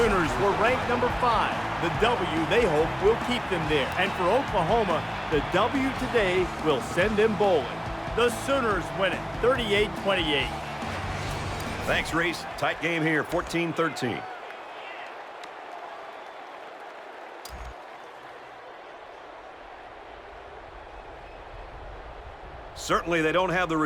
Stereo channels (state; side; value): identical; both; correlation 1.00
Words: were ranked number 5. The W, they hope, will keep them there. And for Oklahoma, the W today will send them bowling. The Sooners win it 38-28. Thanks, Reese. Tight game here, 14-13. Certainly they don't have the